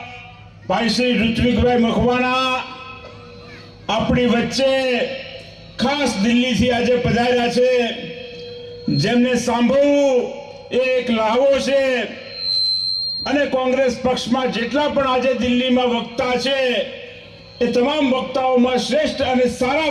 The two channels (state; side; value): identical; both; correlation 1.00